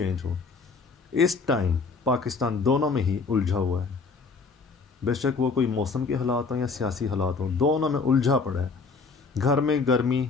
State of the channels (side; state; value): right; quieter; 4.5 dB